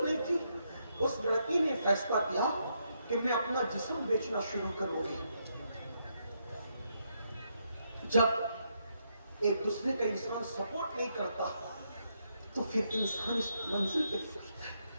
نہیں تھی۔ اس لڑکی نے فیصلہ کیا کہ میں اپنا جسم بیچنا شروع کروں گی۔ جب ایک دوسرے کا انسان سپورٹ نہیں کرتا تو پھر انسان اس منزل پہ پہنچتا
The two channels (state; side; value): inverted; both; correlation -0.78